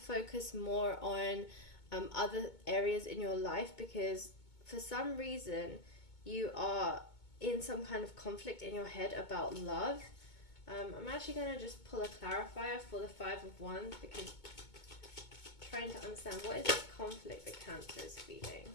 more on other areas in your life because for some reason you are in some kind of conflict in your head about love. I'm actually going to just pull a clarifier for the Five of Wands, because trying to understand what is this conflict that Cancer is feeling.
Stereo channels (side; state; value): right; late; 2.2 ms